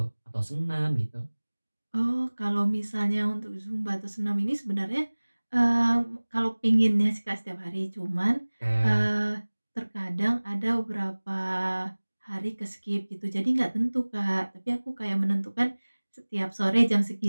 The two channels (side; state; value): both; inverted; correlation -1.00